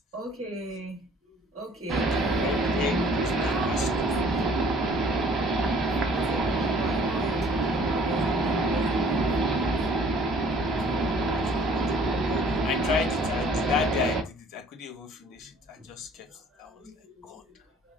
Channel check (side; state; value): both; normal; correlation 0.55